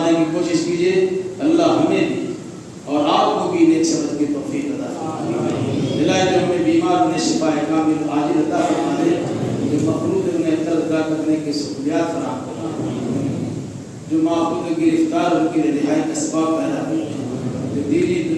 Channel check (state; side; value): identical; both; correlation 1.00